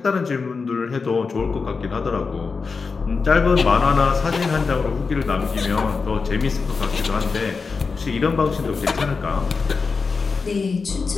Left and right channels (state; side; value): quieter; right; 4.8 dB